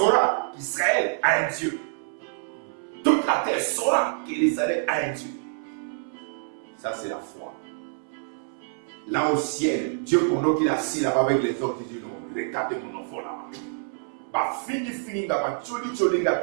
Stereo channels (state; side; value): silent; left; 60 dB below the other